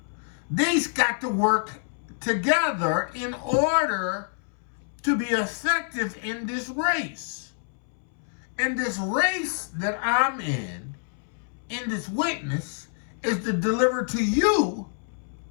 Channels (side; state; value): right; silent; 60 dB below the other